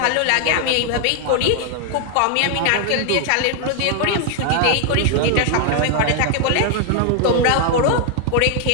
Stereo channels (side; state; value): both; different; correlation 0.00